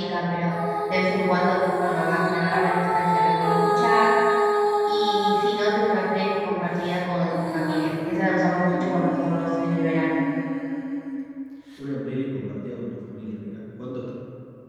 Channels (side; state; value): both; identical; correlation 1.00